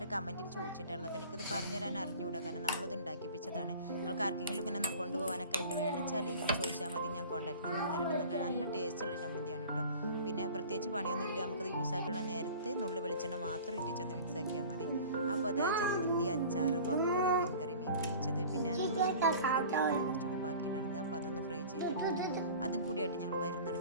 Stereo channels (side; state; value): both; inverted; correlation -0.41